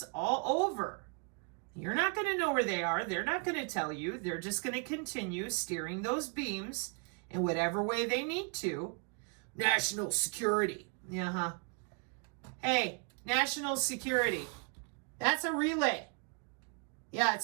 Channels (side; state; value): left; quieter; 39.2 dB